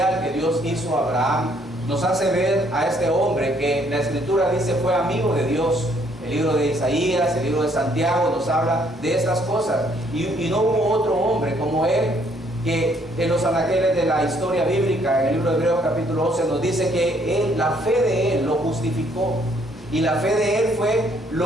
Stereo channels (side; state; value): both; normal; correlation 0.66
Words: que Dios hizo a Abraham nos hace ver a este hombre que la Escritura dice fue amigo de Dios. El libro de Isaías, el libro de Santiago nos habla de estas cosas, y no hubo otro hombre como él, que en los anaqueles de la historia bíblica, en el libro de Hebreos capítulo 11 nos dice que la fe de él lo justificó, y la fe de él fue